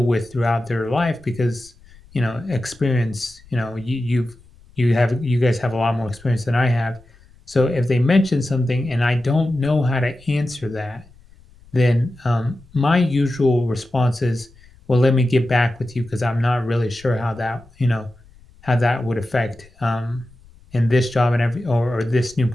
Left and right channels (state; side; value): noise; left; rumble, 26 dB below the sound